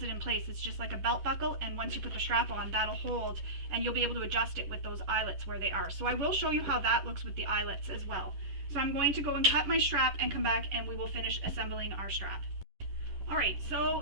it in place. It's just like a belt buckle, and once you put the strap on, that'll hold, and you'll be able to adjust it with those eyelets where they are. So I will show you how that looks with the eyelets as well. So I'm going to go and cut my strap and come back and we will finish assembling our strap. Alright,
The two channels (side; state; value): left; late; 10 ms